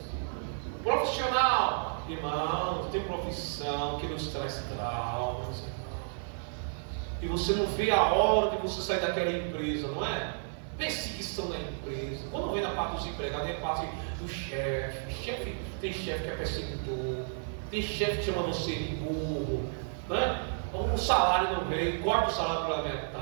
Profissional. Irmão, tem profissão que nos traz traumas. E você não vê a hora de você sair daquela empresa, não é? Perseguição na empresa. Quando vem na parte dos empregados, vem a parte do chefe. Tem chefe que é perseguidor. Tem chefe que chama você de burro. Né? O salário não vem, corta o salário pela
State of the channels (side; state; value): left; silent; 57 dB below the other